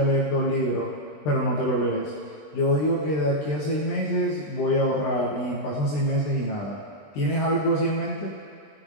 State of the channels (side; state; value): right; late; 20 ms